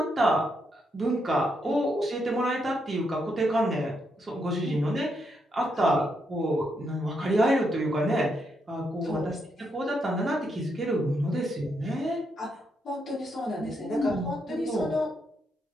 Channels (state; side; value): normal; both; correlation 0.79